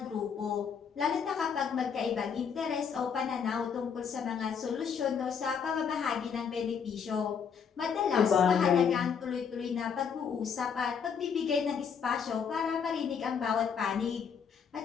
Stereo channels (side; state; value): right; quieter; 6.8 dB